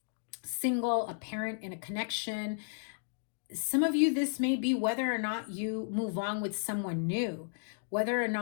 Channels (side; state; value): right; silent; digital silence